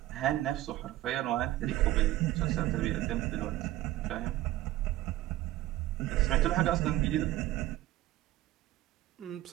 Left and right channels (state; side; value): quieter; left; 15.5 dB